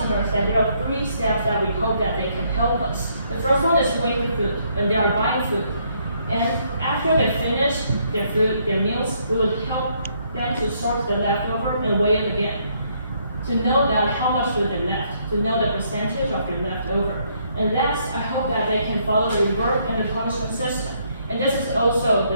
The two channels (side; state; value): both; inverted; correlation -0.71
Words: that there are 3 steps that we hope that they can help us. The first one is weighing the food, when they are buying food. And after they finish their food, their meals, we will help them to sort the leftover and weigh it again. To know that how much food they left, to know the percentage of your leftover. And last, I hope that they can follow the reward and the punishment system. And this is also